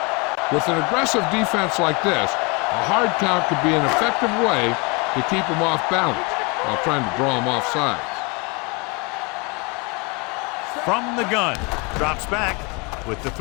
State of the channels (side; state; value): right; quieter; 29.9 dB